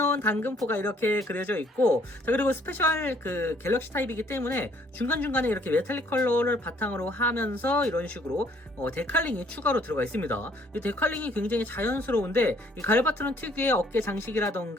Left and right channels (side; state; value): both; normal; correlation 0.62